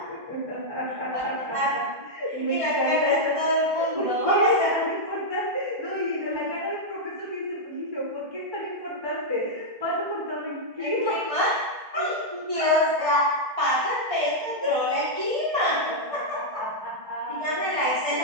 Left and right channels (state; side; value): late; left; 1.6 ms